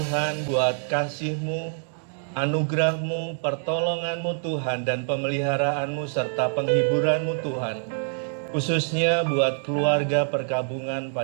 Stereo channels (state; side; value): silent; left; digital silence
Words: buat kasih-Mu, anugerah-Mu, pertolongan-Mu Tuhan, dan pemeliharaanmu serta penghiburan-Mu Tuhan. Khususnya buat keluarga perkabungan